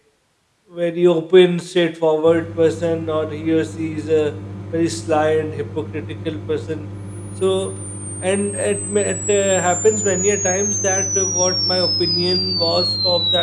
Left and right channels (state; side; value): identical; both; correlation 1.00